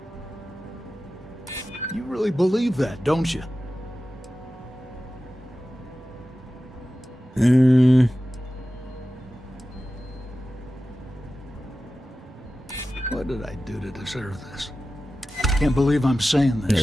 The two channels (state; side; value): normal; both; correlation 0.94